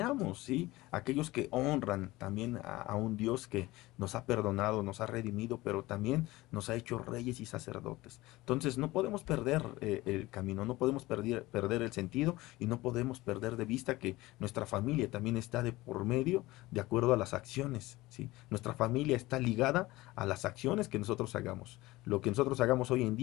¿sí? Aquellos que honran también a un Dios que nos ha perdonado, nos ha redimido, pero también nos ha hecho reyes y sacerdotes. Entonces no podemos perder el camino, no podemos perder el sentido y no podemos perder de vista que nuestra familia también está de por medio de acuerdo a las acciones, ¿sí? Nuestra familia está ligada a las acciones que nosotros hagamos. Lo que nosotros hagamos hoy en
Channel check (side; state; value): right; quieter; 19.3 dB